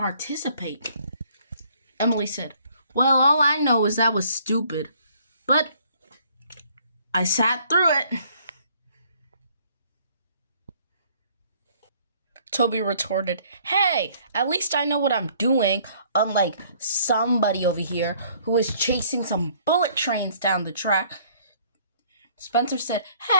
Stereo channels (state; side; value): inverted; both; correlation -0.60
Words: Emily said, Well, all I know is that was stupid. But I sat through it. Toby retorted, Hey, at least I know what I'm doing, unlike somebody over here who is chasing some bullet trains down the track. Spencer said,